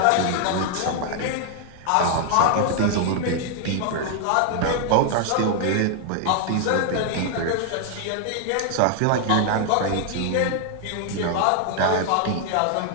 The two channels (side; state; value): both; different; correlation 0.00